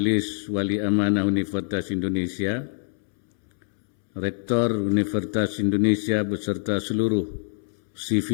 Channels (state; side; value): silent; right; 62 dB below the other